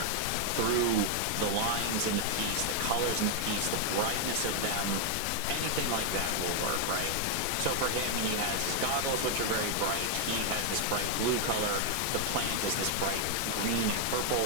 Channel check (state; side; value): different; both; correlation 0.00